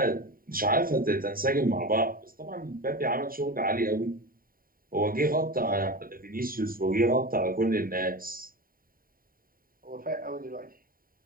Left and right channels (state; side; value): late; left; 0.41 ms